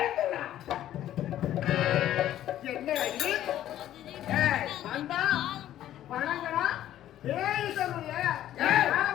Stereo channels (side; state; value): right; quieter; 12.4 dB